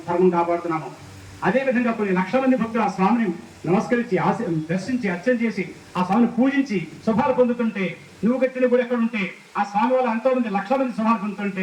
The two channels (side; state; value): both; identical; correlation 1.00